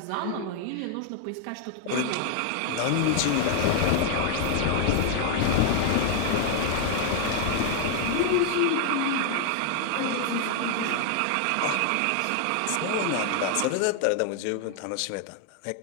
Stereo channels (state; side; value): different; both; correlation 0.00